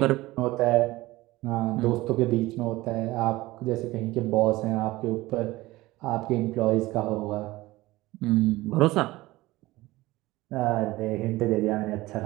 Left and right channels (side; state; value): left; quieter; 18.9 dB